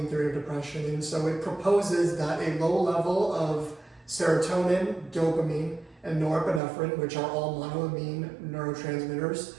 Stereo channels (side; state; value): left; drops out; at 6.6 s